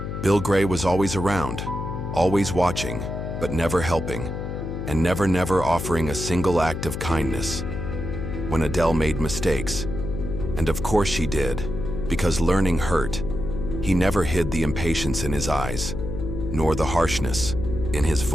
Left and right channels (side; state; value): left; noise; hum, 5 dB below the sound